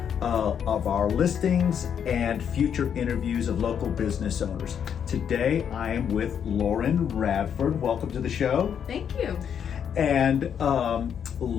of our listings and future interviews of local business owners. Today I am with Lauren Radford. Welcome to the show. Thank you. And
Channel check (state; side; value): quieter; right; 8.2 dB